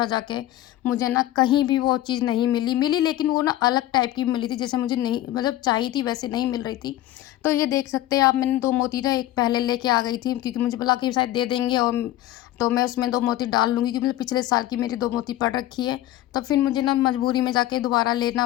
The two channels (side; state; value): right; quieter; 14.4 dB